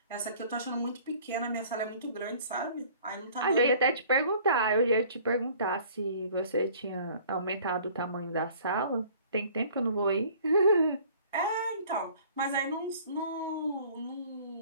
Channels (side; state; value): both; inverted; correlation -0.52